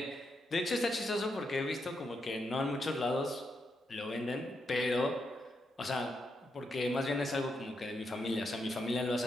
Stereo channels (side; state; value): both; normal; correlation 0.82